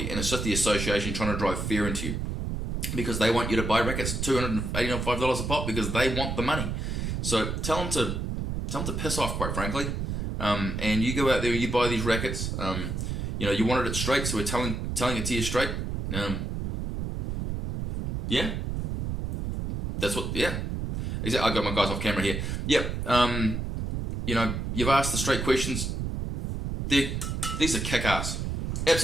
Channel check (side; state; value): right; noise; rumble, 3 dB below the sound